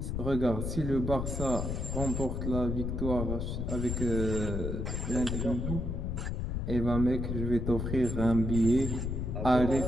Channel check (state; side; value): noise; left; rumble, 2 dB below the sound